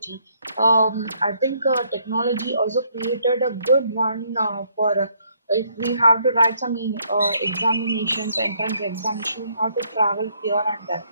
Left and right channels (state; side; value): inverted; both; correlation -0.69